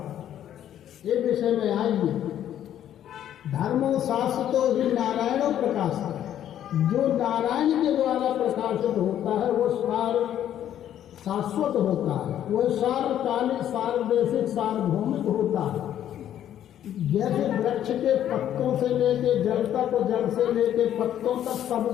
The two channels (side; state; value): right; quieter; 10.9 dB